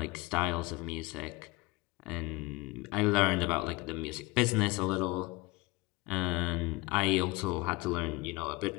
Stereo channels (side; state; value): right; quieter; 23.0 dB